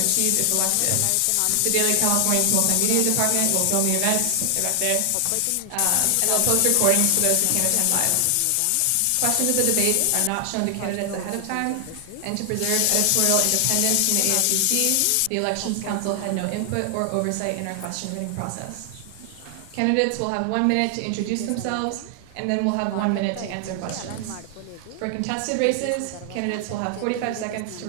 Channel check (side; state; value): both; different; correlation 0.00